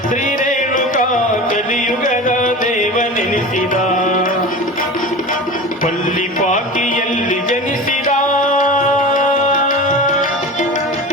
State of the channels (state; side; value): normal; both; correlation 0.32